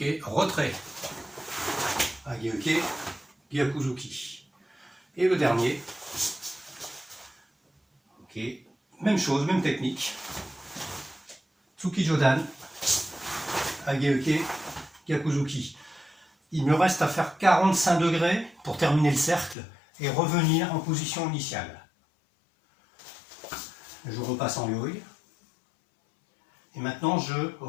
retrait. Ageuke, Gyakuzuki. Et le dernier. Ok, même chose, même technique. Tsuki Jodan. Ageuke, Gyakuzuki. Il me reste à faire 45 degrés pour terminer le cercle et revenir en position initiale. Je repasse en yoi. Et maintenant, je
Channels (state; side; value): drops out; right; at 19.6 s